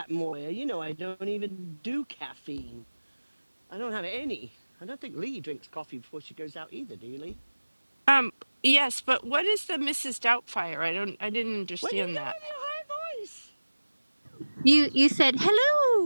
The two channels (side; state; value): both; inverted; correlation -1.00